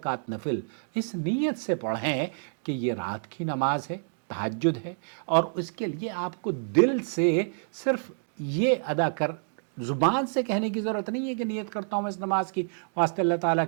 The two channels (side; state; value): left; silent; digital silence